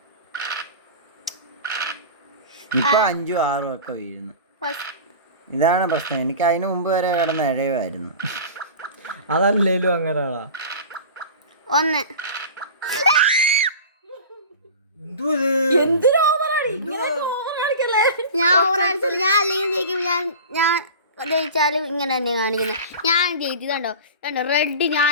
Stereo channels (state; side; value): inverted; both; correlation -0.35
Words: ഇപ്പൊ 5ഉം 6ഉം ഒക്കെ വീഴുന്നു. ഇതാണ് പ്രശ്നം. എനിക്ക് അതിന് മുമ്പ് വരെ കിടന്ന് ഇഴയുമായിരുന്നു. അതല്ലേലും അങ്ങനെയാ. 1 ഞാൻ ഓവർ അടിച്ചില്ല. ഞാൻ അല്ലെങ്കിൽ ജയിക്കും. ഞാൻ ജയിച്ചാലും ഇങ്ങനെ തന്നെ കാണിക്കുന്നത്. ഞാൻ ജയിച്ചു കണ്ടോ റെഡ്.